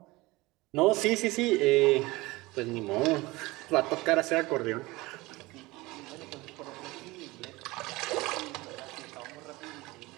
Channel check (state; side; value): quieter; left; 21.4 dB